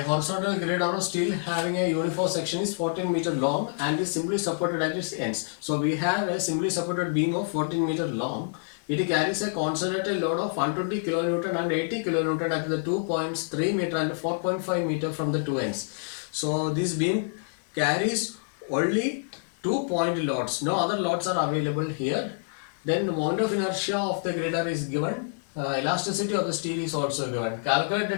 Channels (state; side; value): silent; right; digital silence